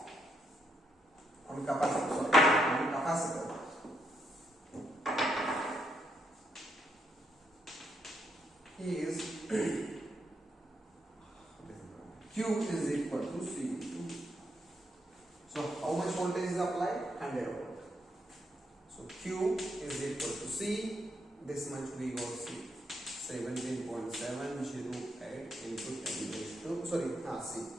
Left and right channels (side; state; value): both; normal; correlation 0.77